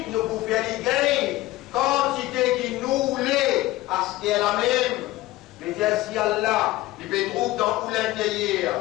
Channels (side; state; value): right; quieter; 17.6 dB